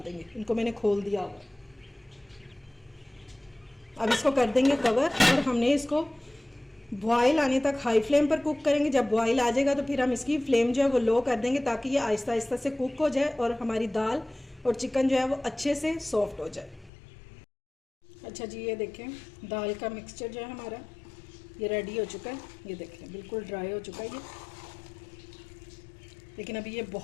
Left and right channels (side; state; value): right; drops out; at 16.9 s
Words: देंगे, इनको मैंने खोल दिया हुआ। अब इसको कर देंगे कवर और हमने इसको बॉयल आने तक हाई फ्लेम पर कुक करेंगे। जब बॉयल आ जाएगा तो फिर हम इसकी फ्लेम जो है वो लो कर देंगे, ताकि ये आहिस्ता आहिस्ता से कुक हो जाए और हमारी दाल और चिकन जो है वो अच्छे से सॉफ्ट हो जाए। अच्छा जी, ये देखें दाल का मिक्सचर जो है हमारा ये रेडी हो चुका है। ये देखें बिल्कुल ड्राई हो चुका है ये, लेकिन अभी ये